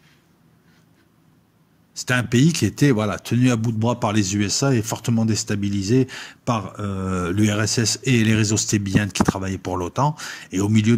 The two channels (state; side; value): identical; both; correlation 1.00